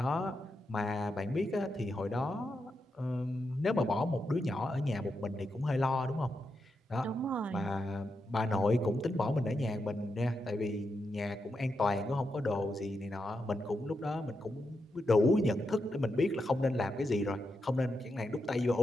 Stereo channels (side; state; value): both; normal; correlation 0.85